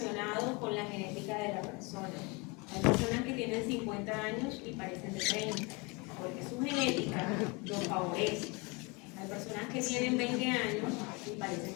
con la genética de la persona. Hay personas que tienen 50 años y parecen de 30, porque su genética lo favorece. Hay personas que tienen 20 años y parecen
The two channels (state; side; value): quieter; right; 28.4 dB